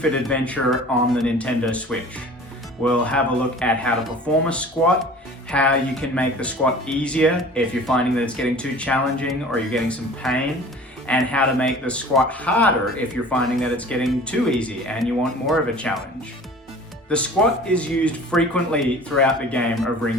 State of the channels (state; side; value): normal; both; correlation 0.44